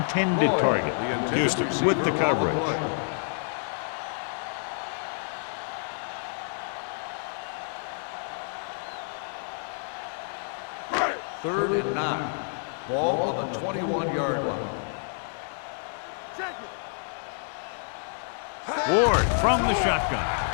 target. Houston with the coverage. Third and 9. Ball on the 21-yard line. Ward from the shotgun.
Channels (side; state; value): right; silent; digital silence